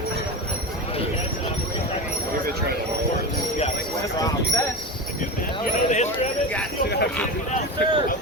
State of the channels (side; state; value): both; normal; correlation 0.23